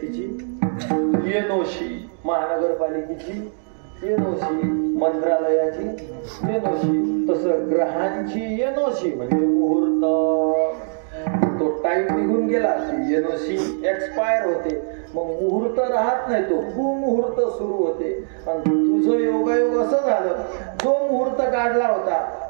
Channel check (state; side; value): silent; left; digital silence